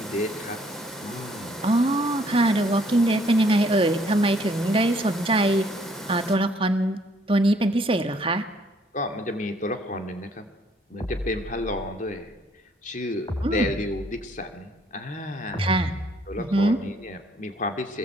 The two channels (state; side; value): normal; both; correlation 0.64